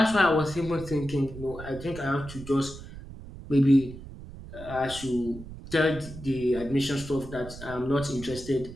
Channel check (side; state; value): right; noise; rumble, 14 dB below the sound